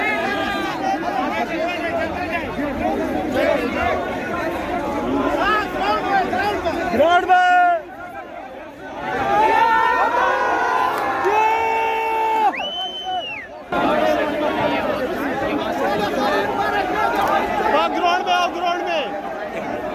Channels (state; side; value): identical; both; correlation 1.00